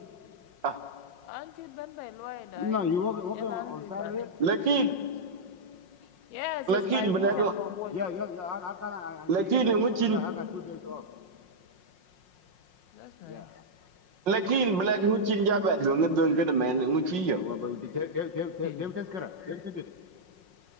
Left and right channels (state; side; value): late; left; 5.5 ms